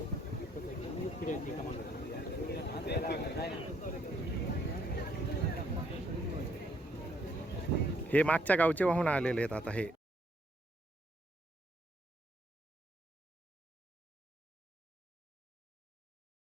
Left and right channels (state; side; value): normal; both; correlation 0.69